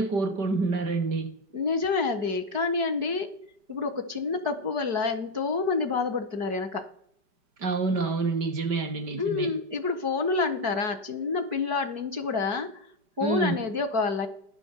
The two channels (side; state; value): left; late; 4.6 ms